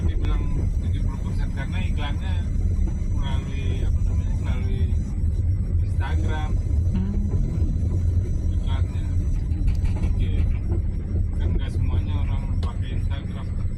dibilang 70%? Karena iklannya melalui apa namanya, melalui Instagram iklannya. Gitu. Kan nggak semuanya orang pakai Instagram.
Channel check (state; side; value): identical; both; correlation 1.00